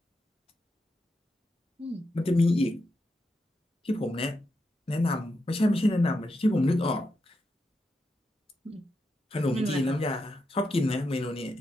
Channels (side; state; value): both; normal; correlation 0.85